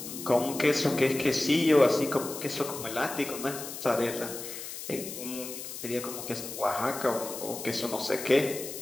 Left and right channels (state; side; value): noise; left; hiss, 9 dB below the sound